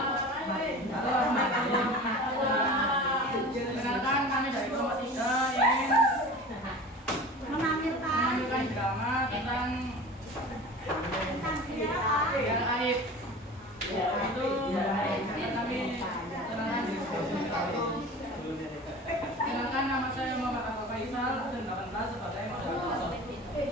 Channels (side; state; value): both; normal; correlation 0.37